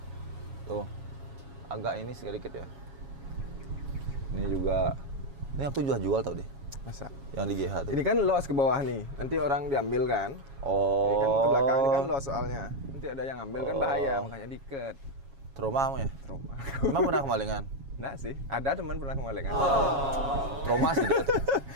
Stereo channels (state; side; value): late; left; 7.3 ms